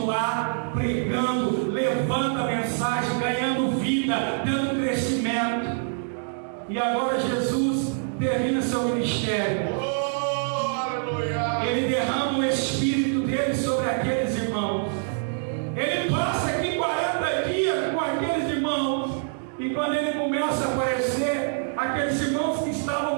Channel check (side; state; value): left; silent; digital silence